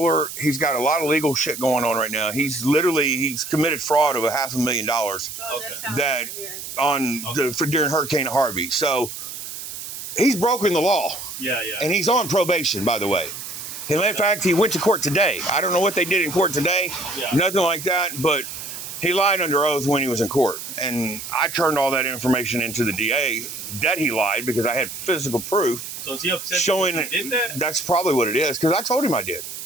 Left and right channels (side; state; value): right; noise; hiss, 9 dB below the sound